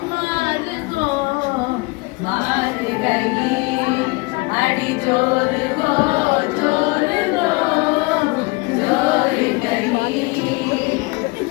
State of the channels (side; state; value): right; quieter; 25.8 dB